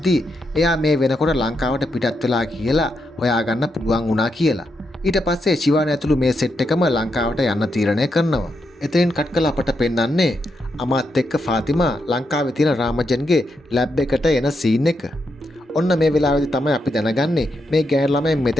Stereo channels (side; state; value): both; normal; correlation 0.82